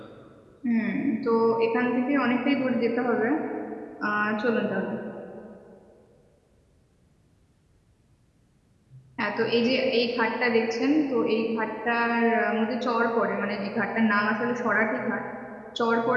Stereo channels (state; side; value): identical; both; correlation 1.00